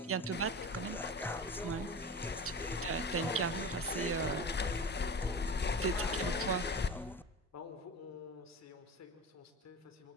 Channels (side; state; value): both; normal; correlation 0.31